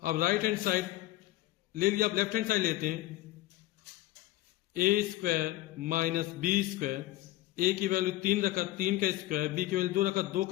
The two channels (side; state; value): right; quieter; 16.5 dB